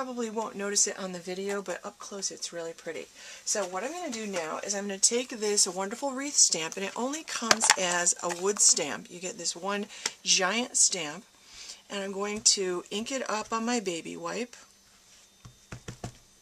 won't notice it on the video, but up close it's really pretty. So what I'm going to do now is I'm going to take this wonderful Wreath stamp, and it only comes as a wood stamp. You get this one giant stamp, and I'm going to ink it up on my baby wipe.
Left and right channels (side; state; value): both; identical; correlation 1.00